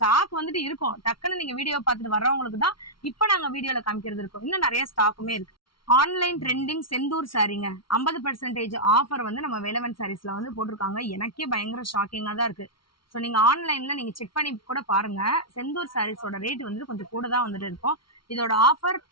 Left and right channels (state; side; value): late; right; 0.74 ms